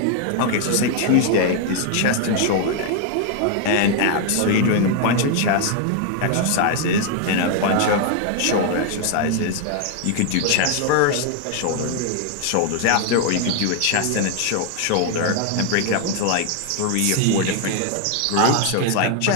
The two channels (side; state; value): both; different; correlation 0.00